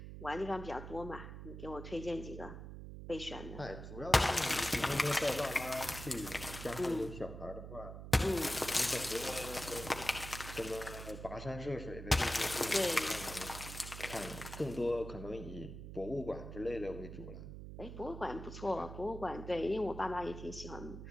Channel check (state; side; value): noise; right; hum, 10 dB below the sound